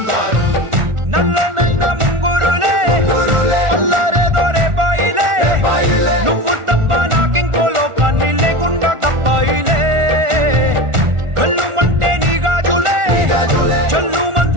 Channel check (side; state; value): left; late; 1.4 ms